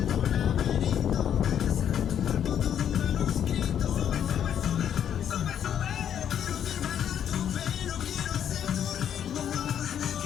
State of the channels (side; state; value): right; quieter; 9.3 dB